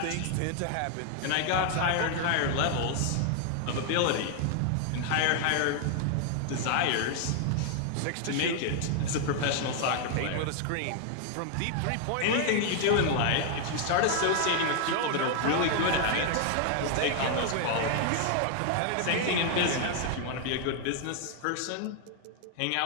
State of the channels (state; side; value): different; both; correlation 0.00